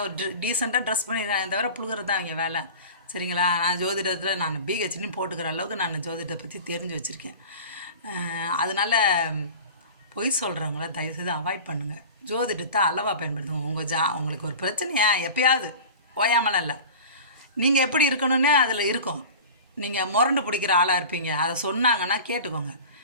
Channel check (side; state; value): both; inverted; correlation -0.35